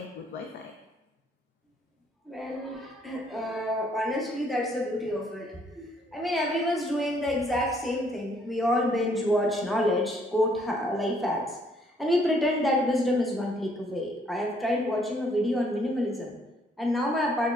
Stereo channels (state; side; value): normal; both; correlation 0.66